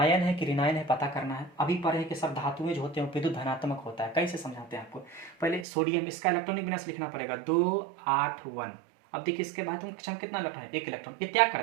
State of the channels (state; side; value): drops out; left; at 5.7 s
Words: है कि ऋणायन है पता करना है। अभी पढ़े कि सब धातुएं जो होते हैं विद्युत धनात्मक होता है। कैसे समझाते हैं आपको, पहले सोडियम, इसका इलेक्ट्रॉनिक विन्यास लिखना पड़ेगा 281। अब देखिए इसके बाह्यतम कक्षा में कितना इलेक्ट्रॉन है, 1 इलेक्ट्रॉन, ये त्याग